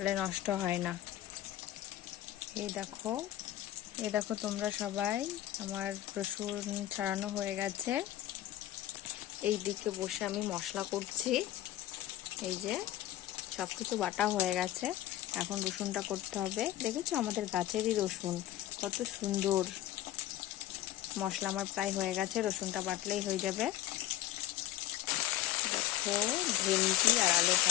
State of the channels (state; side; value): quieter; right; 13.7 dB